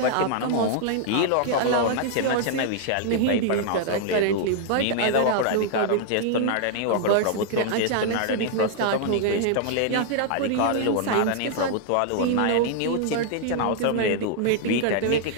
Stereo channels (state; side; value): different; both; correlation -0.01